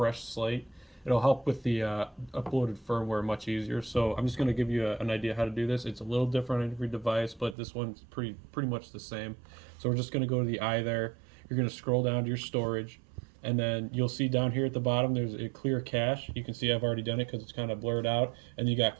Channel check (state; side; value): drops out; left; at 7.6 s